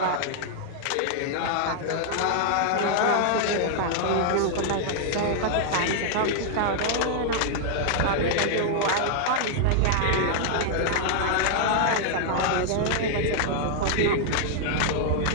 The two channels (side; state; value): both; different; correlation -0.01